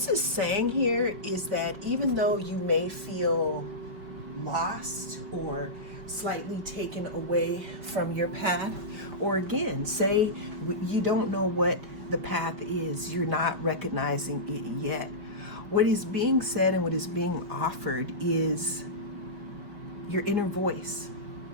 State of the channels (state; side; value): late; left; 5.0 ms